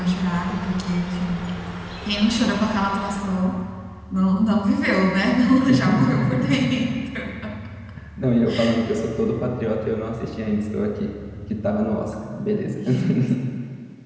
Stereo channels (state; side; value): identical; both; correlation 1.00